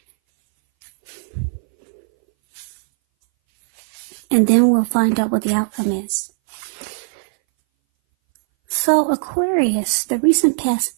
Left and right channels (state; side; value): silent; left; 61 dB below the other